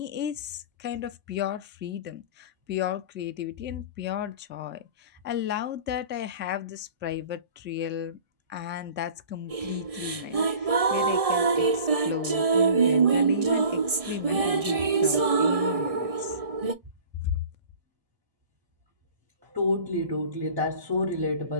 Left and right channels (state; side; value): late; left; 1.6 ms